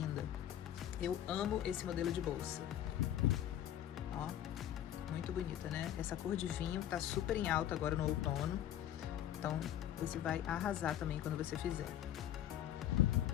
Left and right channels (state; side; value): quieter; right; 11.4 dB